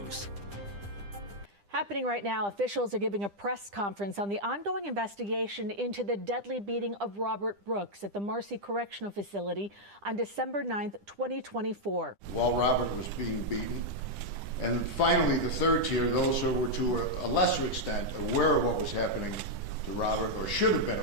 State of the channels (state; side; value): late; left; 10 ms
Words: Happening right now, officials are giving a press conference on the ongoing investigation into the deadly beating of Robert Brooks at the Marcy Correctional Facility on December 9th, 2024. While Robert was being beaten. And finally, the third tier, those who were to a lesser extent aware of what was happening to Robert, or should have